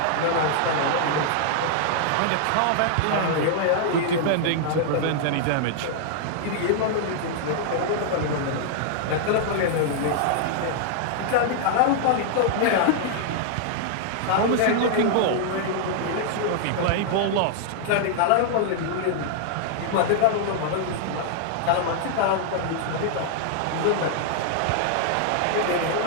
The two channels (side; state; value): both; different; correlation -0.01